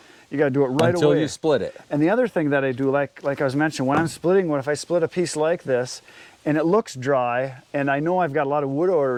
You got to do it right away. Until you split it. And the other thing that I do, like I was mentioning, when I'm splitting wood, if I split a piece like this and it looks dry, and I know I've got a lot of wood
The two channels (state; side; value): identical; both; correlation 1.00